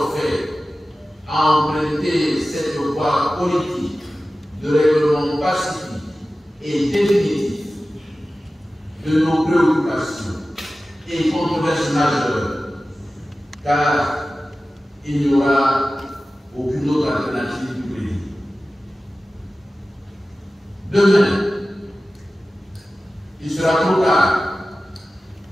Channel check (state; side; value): normal; both; correlation 0.95